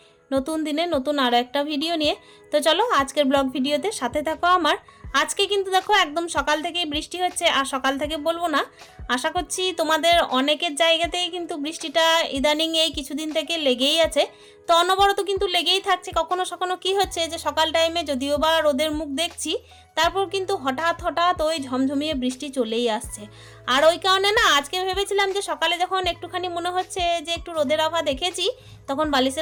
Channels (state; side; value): identical; both; correlation 1.00